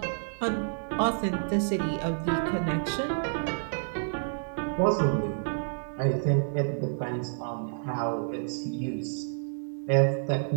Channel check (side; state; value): left; silent; digital silence